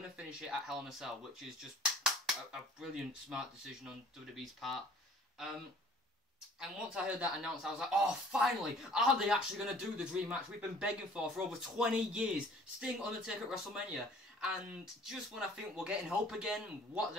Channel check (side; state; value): both; normal; correlation 0.52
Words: to finish it at Hell in a Cell, which is just a brilliant, smart decision on WWE's part. And once I heard that announced, I was like, oh, finally! Are they actually going to do the dream match we've been begging for over 20 years? Sting, Undertaker at WrestleMania. And just when I think we're getting hope again, what